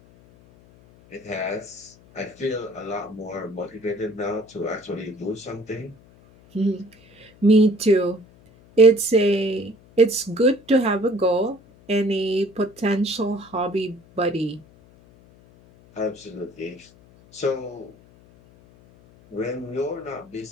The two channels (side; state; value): left; noise; hum, 26 dB below the sound